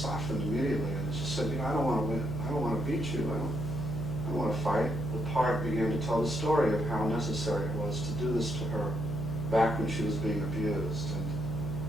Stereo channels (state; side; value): noise; left; hum, 6 dB below the sound